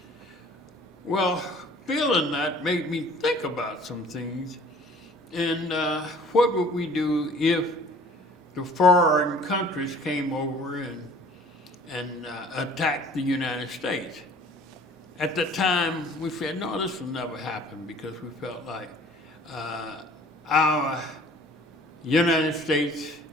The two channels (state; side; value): normal; both; correlation 0.51